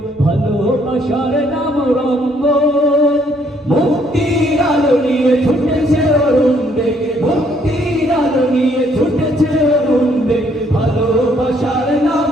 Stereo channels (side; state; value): both; normal; correlation 0.67